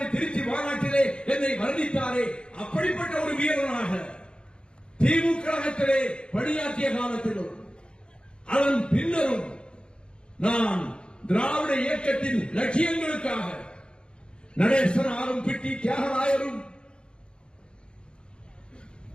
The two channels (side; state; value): right; late; 0.053 ms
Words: திருச்சி மாநாட்டிலே என்னை வர்ணித்தாரே, அப்படிப்பட்ட ஒரு வீரனாக திமுக பணியாற்றிய காலத்திலும் அதன் பின்னரும் நான் திராவிட இயக்கத்தின் லட்சியங்களுக்காக நடேசனாரும் பிட்டி தியாகராயரும்